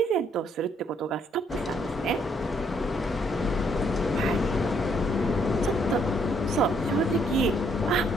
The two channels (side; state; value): both; normal; correlation 0.69